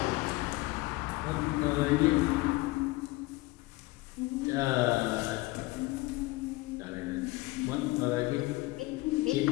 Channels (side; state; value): right; quieter; 21.1 dB